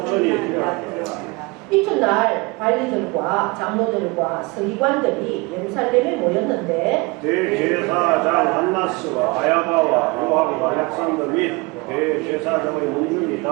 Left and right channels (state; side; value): quieter; left; 26.5 dB